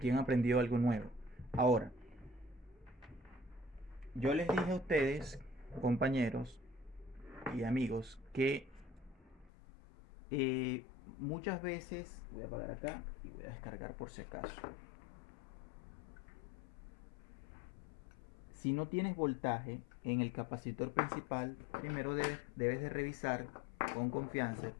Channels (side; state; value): right; drops out; at 9.5 s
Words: han aprendido algo nuevo. Ahora, yo les dije a ustedes, compañeros y amigos, que muchas veces, voy a apagar acá y voy a descargar por si acaso. Si no tienes voltaje en el capacitor principal, primero debes de revisar con confianza,